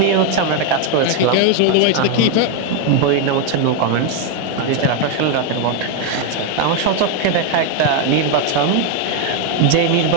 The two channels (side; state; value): both; different; correlation 0.01